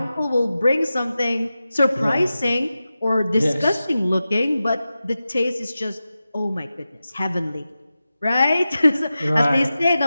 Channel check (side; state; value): both; inverted; correlation -0.93